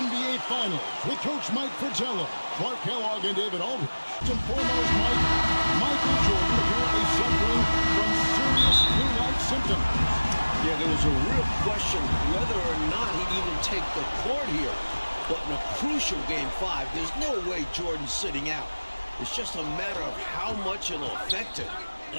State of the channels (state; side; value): inverted; both; correlation -1.00